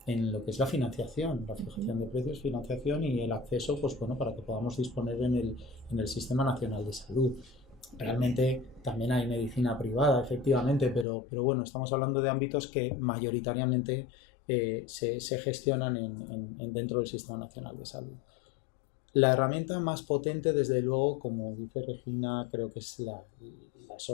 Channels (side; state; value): right; drops out; at 11.1 s